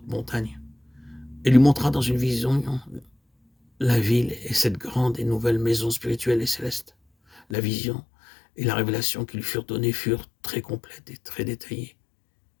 montagne, et lui montra dans une vision la ville et cette grande et nouvelle maison spirituelle et céleste. La vision et la révélation qui lui furent données furent très complètes et très détaillées.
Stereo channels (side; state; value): right; drops out; at 7.6 s